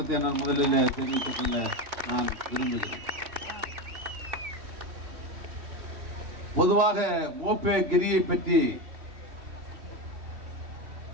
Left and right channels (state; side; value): late; left; 3.1 ms